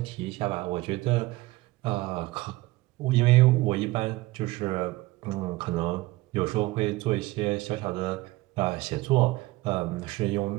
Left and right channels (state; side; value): quieter; left; 19.9 dB